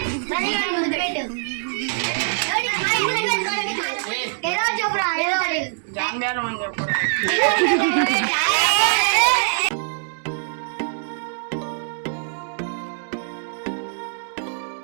ఏదో చెప్పురా. జాంబేరం అని చెప్పు.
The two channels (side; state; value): left; silent; digital silence